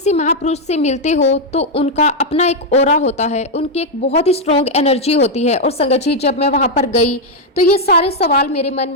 महापुरुष से मिलते हो तो उनका अपना एक ऑरा होता है, उनकी एक बहुत ही स्ट्रॉन्ग एनर्जी होती है। और संगत जी, जब मैं वहां पर गई तो ये सारे सवाल मेरे मन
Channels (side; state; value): both; normal; correlation 0.00